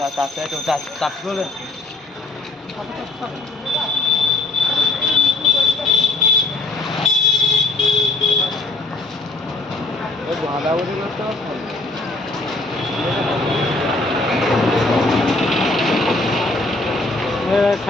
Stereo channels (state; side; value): quieter; right; 3.1 dB